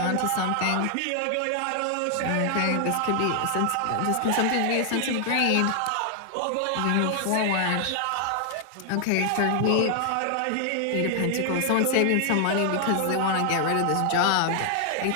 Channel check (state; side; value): different; both; correlation 0.00